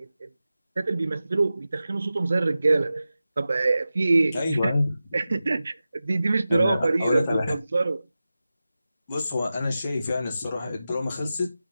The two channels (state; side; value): inverted; both; correlation -0.94